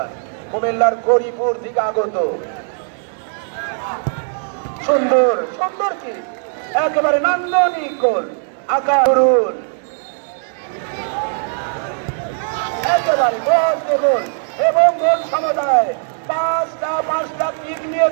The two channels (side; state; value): left; silent; 66 dB below the other